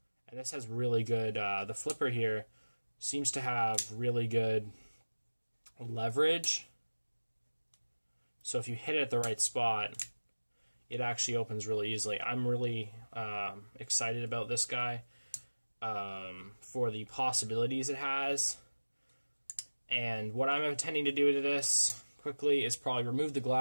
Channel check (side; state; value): both; inverted; correlation -1.00